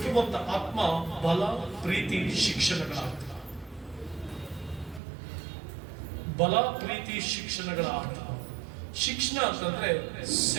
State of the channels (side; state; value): left; drops out; at 5.0 s